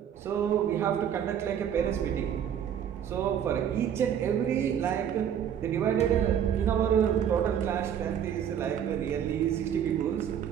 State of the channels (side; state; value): left; quieter; 9.1 dB